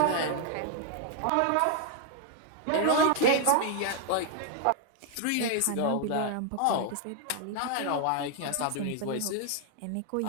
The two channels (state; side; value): different; both; correlation 0.00